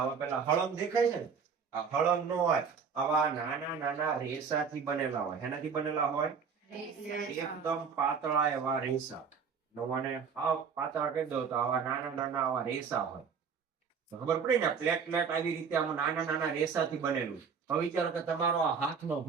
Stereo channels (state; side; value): quieter; left; 6.2 dB